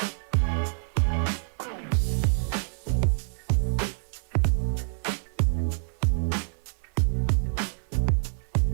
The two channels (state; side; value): silent; left; 60 dB below the other